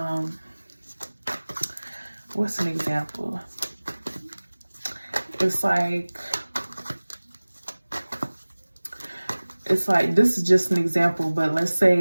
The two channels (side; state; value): both; inverted; correlation -1.00